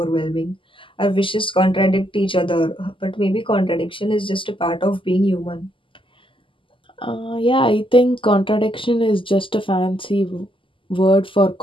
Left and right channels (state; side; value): late; right; 0.25 ms